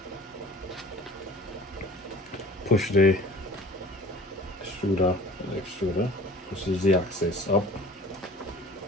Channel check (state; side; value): normal; both; correlation 0.45